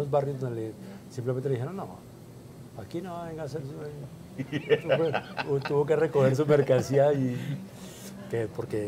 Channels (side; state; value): both; identical; correlation 1.00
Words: barrios donde simplemente le dijeron, no, aquí no venga a hacer tuvo que recoger su mercancía